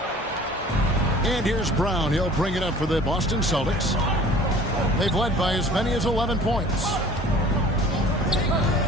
And here's Brown. He'll bring it up for the Boston Celtics. They've led by as many as 11 points.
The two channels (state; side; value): normal; both; correlation 0.48